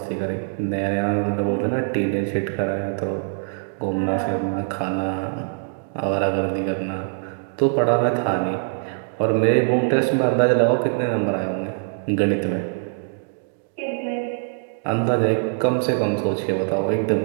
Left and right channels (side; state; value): left; silent; digital silence